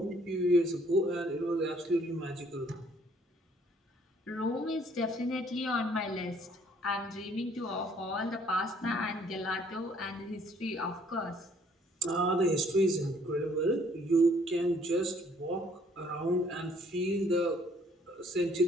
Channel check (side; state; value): both; normal; correlation 0.62